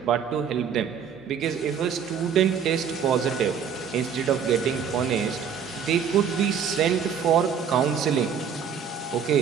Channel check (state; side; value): quieter; left; 7.3 dB